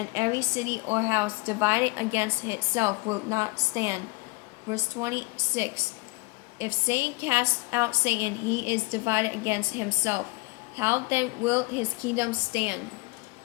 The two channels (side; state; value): right; quieter; 25.4 dB